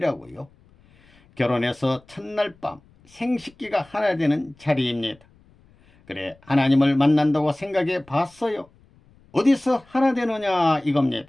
결혼해서 첫날 밤 생식기가 하나 되는 자리입니다. 그래, 하나님을 만난다고 생각해 봤어요? 어디서 하나 되느냐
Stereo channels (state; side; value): noise; left; rumble, 30 dB below the sound